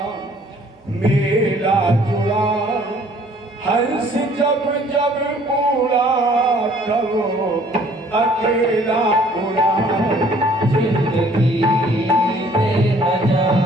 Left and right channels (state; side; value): normal; both; correlation 0.58